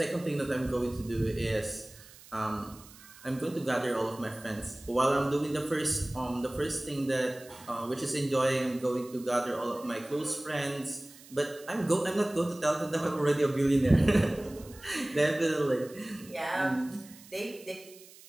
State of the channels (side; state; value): right; noise; hiss, 21 dB below the sound